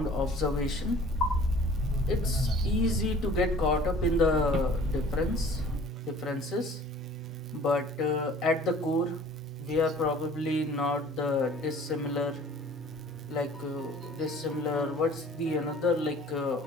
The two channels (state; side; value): normal; both; correlation 0.49